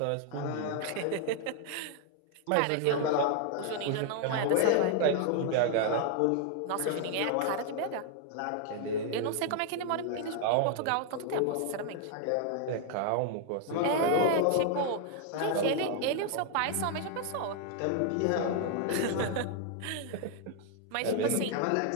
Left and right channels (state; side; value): different; both; correlation 0.00